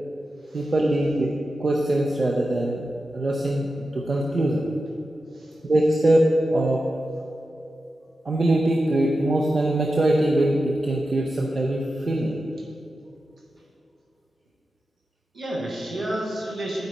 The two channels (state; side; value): normal; both; correlation 0.91